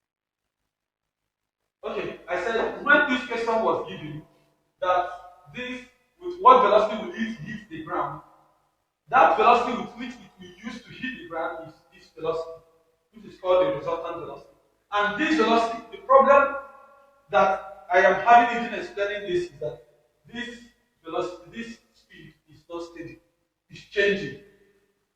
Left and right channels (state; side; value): identical; both; correlation 1.00